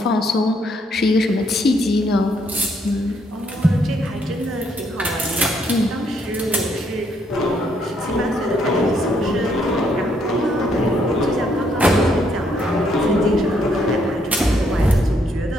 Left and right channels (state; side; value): normal; both; correlation 0.72